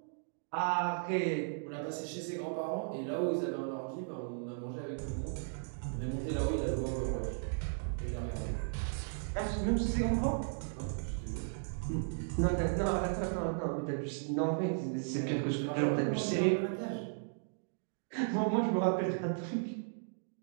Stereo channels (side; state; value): left; silent; digital silence